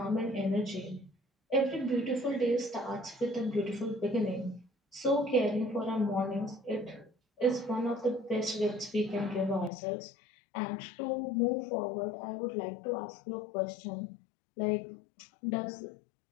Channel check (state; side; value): drops out; right; at 9.7 s